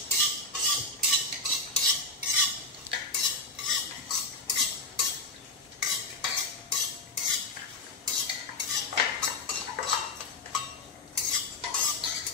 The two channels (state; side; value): quieter; right; 3.1 dB